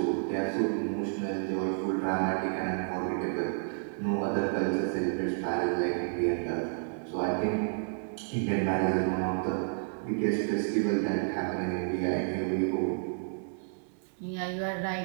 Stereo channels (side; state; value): left; silent; digital silence